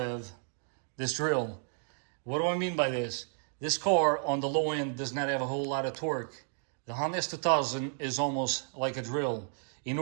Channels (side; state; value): left; silent; 56 dB below the other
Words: this drill. What do I mean by this? This car on the low end does not have a whole lot of torque. The Honda S2000 is almost like a drill. In